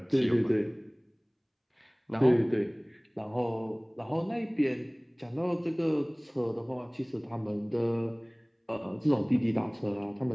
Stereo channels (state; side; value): identical; both; correlation 1.00